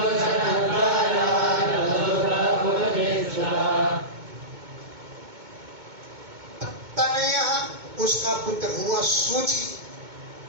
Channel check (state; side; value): late; left; 2.2 ms